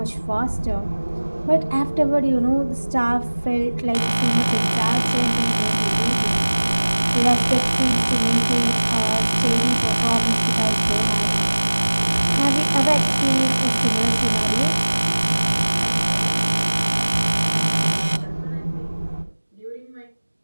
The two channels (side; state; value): both; inverted; correlation -1.00